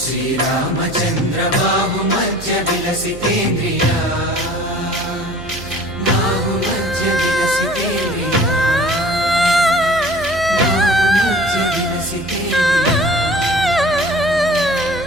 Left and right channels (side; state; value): right; noise; hum, 14 dB below the sound